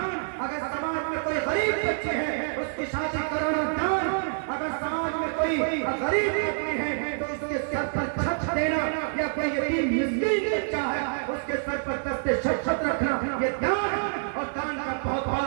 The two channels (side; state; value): left; silent; digital silence